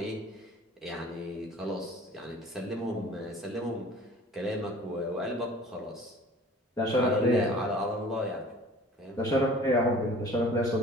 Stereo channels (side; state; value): both; normal; correlation 0.47